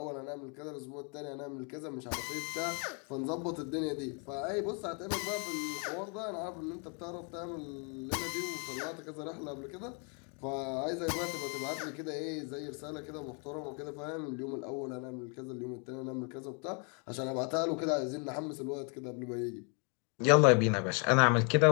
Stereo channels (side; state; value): right; quieter; 36.8 dB